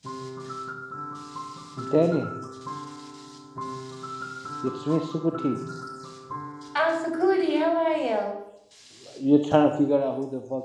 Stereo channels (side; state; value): both; identical; correlation 1.00